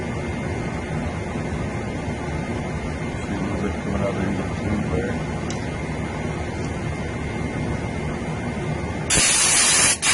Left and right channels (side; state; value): both; identical; correlation 1.00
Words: Coming out of the tube there.